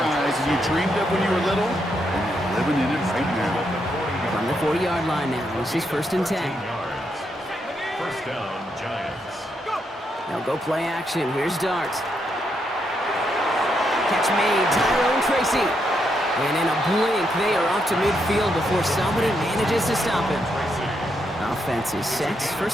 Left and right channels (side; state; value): both; normal; correlation 0.79